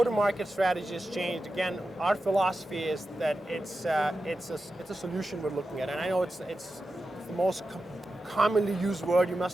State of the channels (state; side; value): normal; both; correlation 0.91